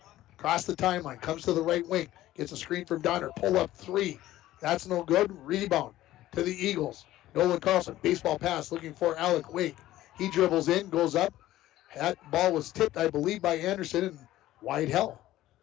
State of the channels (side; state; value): right; quieter; 15.0 dB